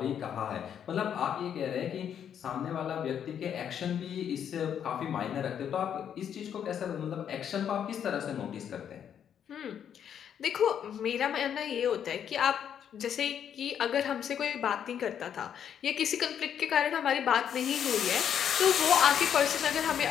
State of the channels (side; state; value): right; quieter; 8.8 dB